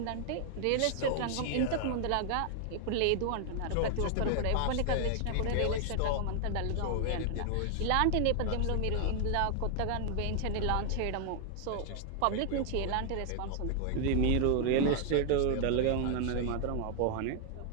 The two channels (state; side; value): different; both; correlation 0.00